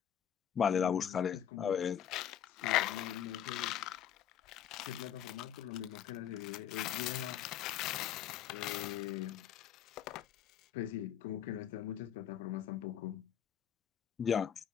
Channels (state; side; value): quieter; right; 9.6 dB